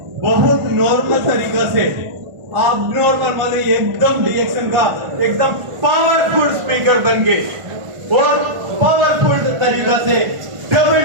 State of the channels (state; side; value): late; left; 1.5 ms